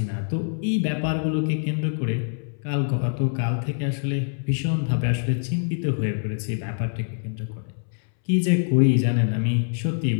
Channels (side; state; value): right; silent; 62 dB below the other